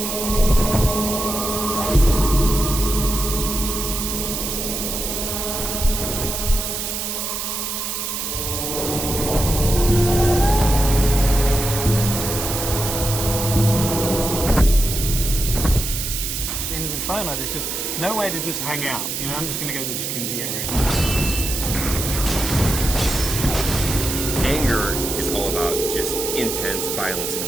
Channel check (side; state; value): right; noise; hiss, 3 dB below the sound